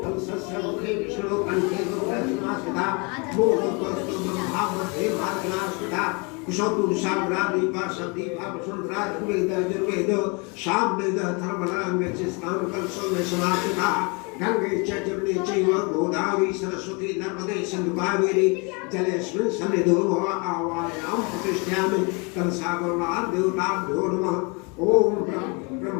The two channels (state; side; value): quieter; right; 31.2 dB